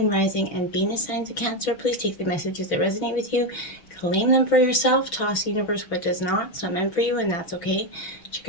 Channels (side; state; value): right; late; 6.0 ms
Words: Rising, and Venus signs of Cancer. Please take the messages that resonate with you, claim them for yourself, toss the universe what does not. It's not meant for you, and that's okay.